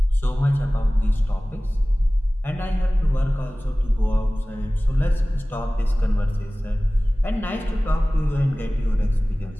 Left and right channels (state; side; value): normal; both; correlation 0.98